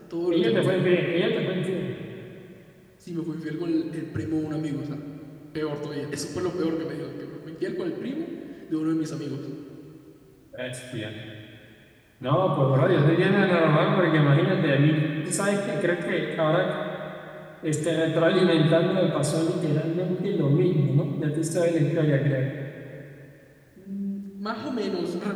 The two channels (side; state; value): both; identical; correlation 1.00